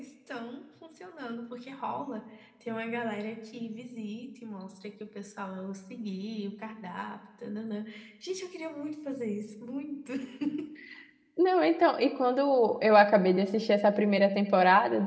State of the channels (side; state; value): both; identical; correlation 1.00